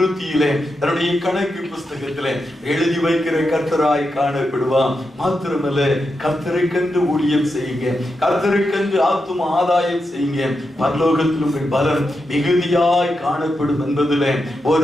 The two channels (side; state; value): both; normal; correlation 0.87